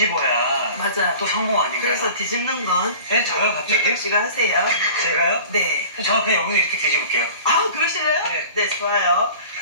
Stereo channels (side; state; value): both; inverted; correlation -0.42